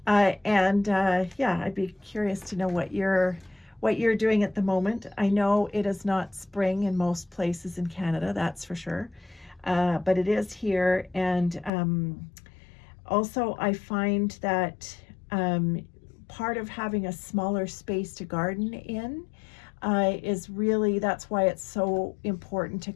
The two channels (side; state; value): right; drops out; at 11.7 s